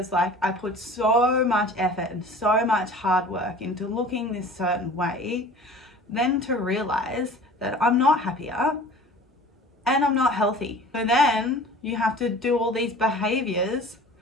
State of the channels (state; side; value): normal; both; correlation 0.43